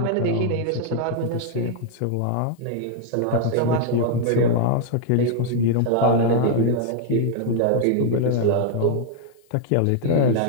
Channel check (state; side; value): different; both; correlation 0.00